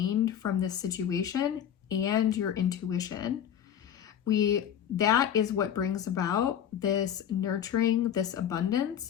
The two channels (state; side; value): quieter; right; 9.5 dB